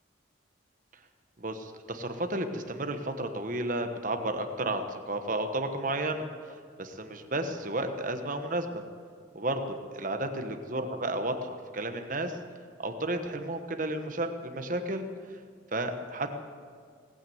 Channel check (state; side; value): normal; both; correlation 0.06